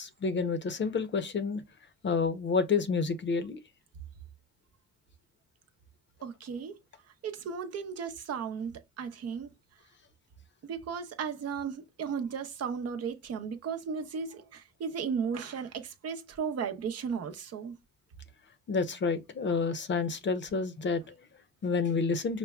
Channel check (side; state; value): both; normal; correlation 0.21